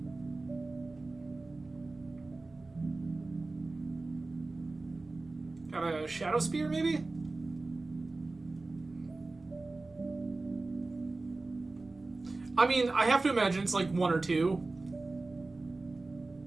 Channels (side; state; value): left; quieter; 3.3 dB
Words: Got a Shadow Spear, maybe? I mean, I have to imagine it's like 1 or 2.